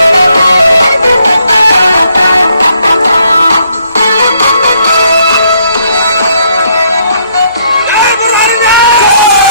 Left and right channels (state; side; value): inverted; both; correlation -0.71